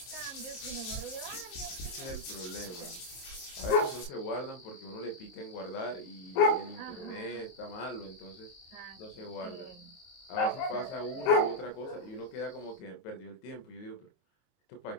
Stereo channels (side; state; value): right; late; 22 ms